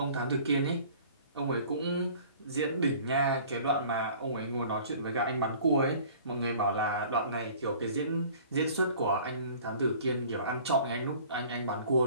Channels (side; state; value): both; inverted; correlation -0.49